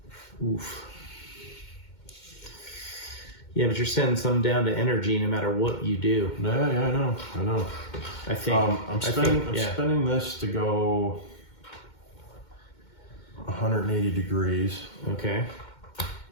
Oof. Yeah, but you're sending some down to energy no matter what you do. Yeah, I know. I think. I'm spinning this to go 180 degrees. Okay.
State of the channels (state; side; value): late; right; 2.2 ms